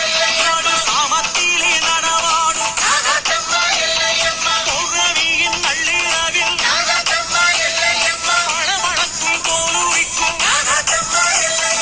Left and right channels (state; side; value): identical; both; correlation 1.00